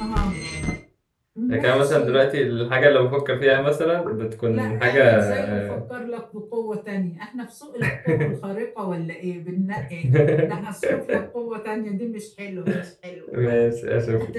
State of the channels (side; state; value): both; identical; correlation 1.00